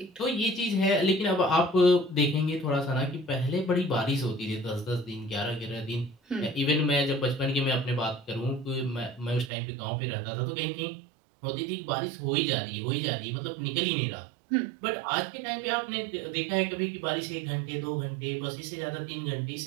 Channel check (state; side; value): drops out; left; at 9.5 s